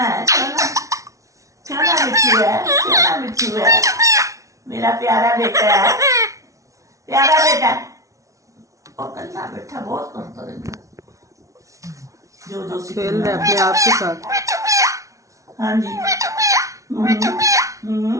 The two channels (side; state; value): left; late; 0.15 ms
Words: है, सोना सोना मिठू है, सोना मिठू है, मेरा प्यारा बेटा है, प्यारा बेटा। और कल्ला बेटा बहुत करता रहता जो खेल रहे अपने आप के साथ। हाँ जी।